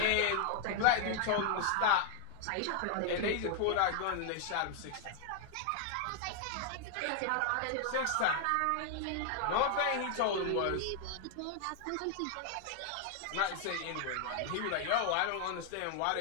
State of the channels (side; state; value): both; different; correlation 0.00